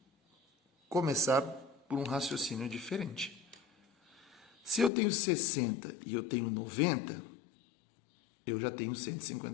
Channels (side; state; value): right; drops out; at 4.9 s